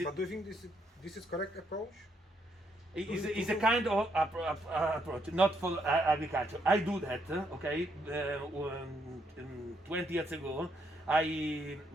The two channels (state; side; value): normal; both; correlation 0.75